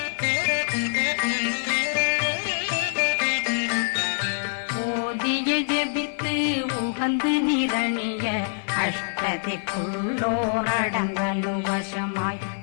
ஓதிய ஜெபித்து உகந்து நிரணிய அஷ்டதிக்குள்ளோரடங்கலு வசமாய்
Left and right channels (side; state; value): right; silent; 62 dB below the other